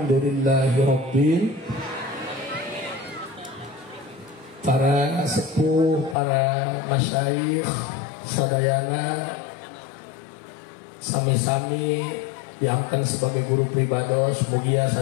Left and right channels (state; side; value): drops out; right; at 6.2 s